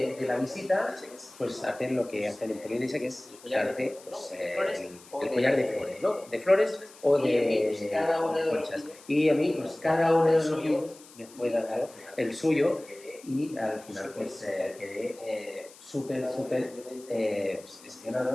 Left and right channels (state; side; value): noise; left; hiss, 22 dB below the sound